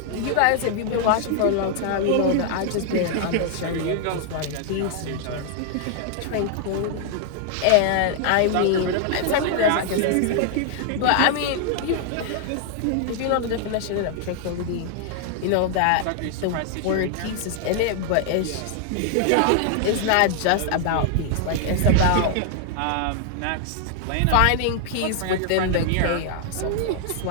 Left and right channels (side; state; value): both; different; correlation 0.00